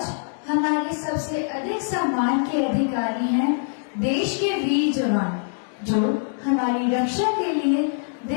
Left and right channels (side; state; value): right; silent; digital silence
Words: हमारे सबसे अधिक सम्मान के अधिकारी हैं देश के वीर जवान, जो हमारी रक्षा के लिए